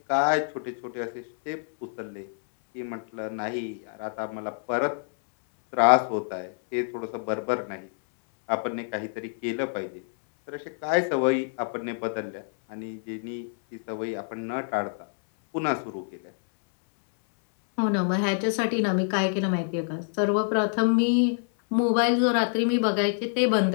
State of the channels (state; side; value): silent; right; 60 dB below the other